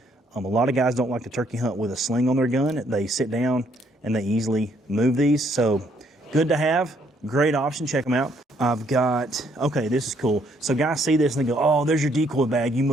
A lot of guys don't like to turkey hunt with a sling on their gun. They sit down and they easily move these. So good to have, great option, check them out. I've got, okay, this is cool. So guys see this and they go, oh, there's your decoy bag. You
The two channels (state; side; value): normal; both; correlation 0.69